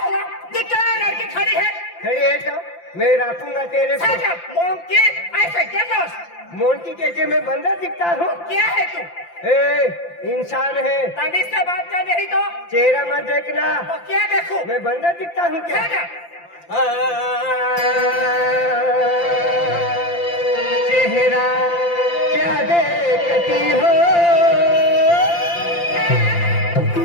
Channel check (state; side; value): late; right; 5.8 ms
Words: दिखता है लड़की खड़ी है। खड़ी है तो मैं रखूंगा तेरे को। मोंकी ऐसे क्या दोस्त? मोंकी कैसे मैं बंदर दिखता हूँ? क्या है तू? ए इंसान है। तमीज से बात कर नहीं तो चेहरा मत देखना। तो क्या देखूं? मैं बंदर दिखता हूँ क्या? चेहरा क्या देखती हो,